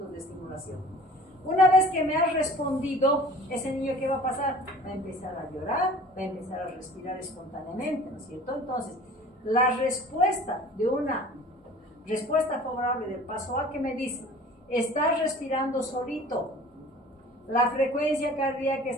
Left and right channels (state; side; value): normal; both; correlation 0.45